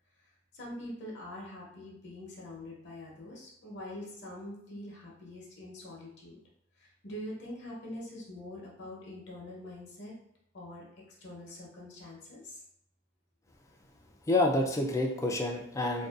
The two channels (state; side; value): normal; both; correlation 0.38